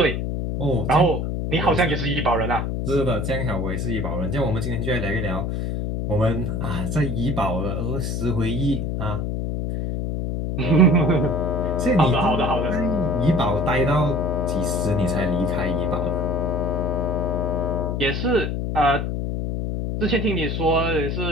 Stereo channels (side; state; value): left; noise; hum, 1 dB below the sound